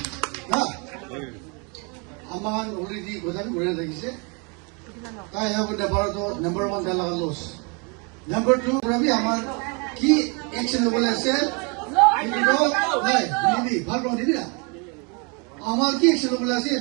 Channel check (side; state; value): left; quieter; 33.2 dB